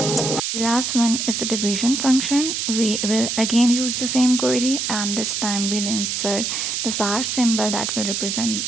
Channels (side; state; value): right; noise; hiss, 1 dB below the sound